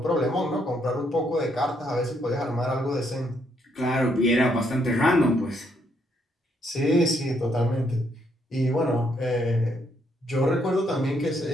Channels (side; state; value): both; normal; correlation 0.73